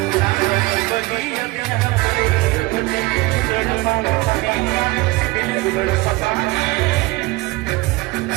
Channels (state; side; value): quieter; left; 21.7 dB